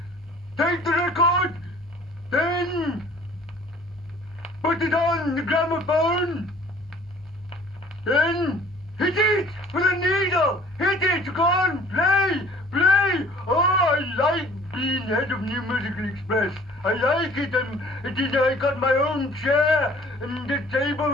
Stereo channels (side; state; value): both; normal; correlation 0.52